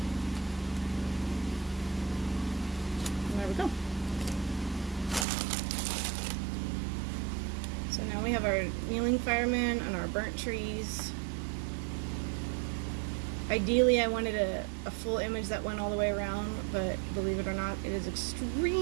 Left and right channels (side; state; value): left; drops out; at 5.2 s